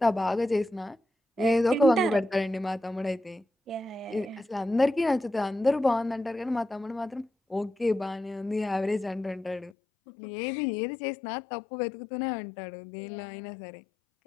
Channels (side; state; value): right; drops out; at 9.7 s